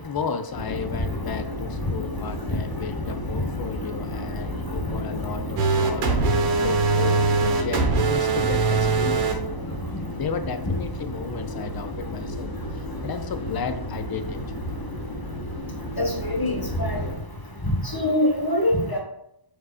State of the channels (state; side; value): late; right; 1.0 ms